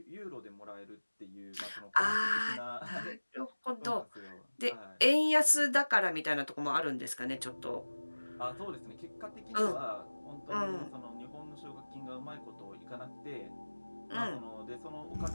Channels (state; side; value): inverted; both; correlation -1.00